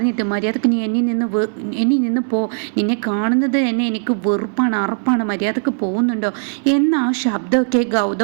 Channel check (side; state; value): left; silent; digital silence